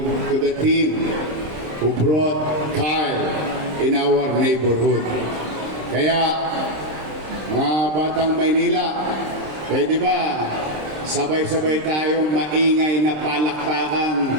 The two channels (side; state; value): left; late; 26 ms